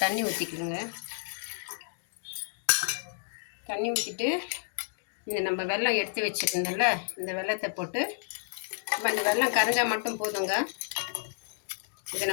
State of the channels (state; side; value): silent; right; digital silence